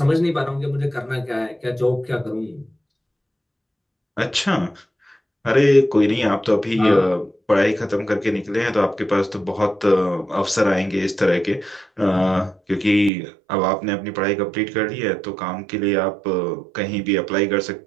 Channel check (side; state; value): left; drops out; at 13.1 s